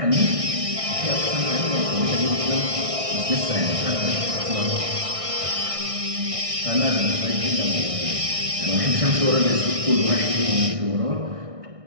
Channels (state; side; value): late; left; 1.6 ms